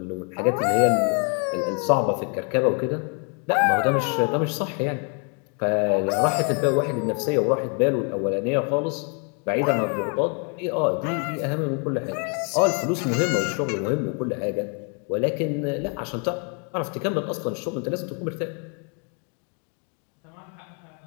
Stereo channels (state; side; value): quieter; right; 38.6 dB